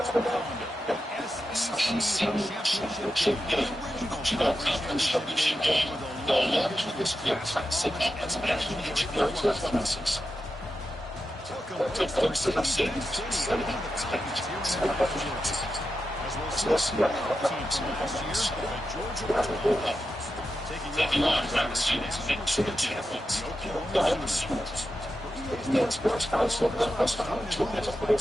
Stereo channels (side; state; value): both; normal; correlation 0.89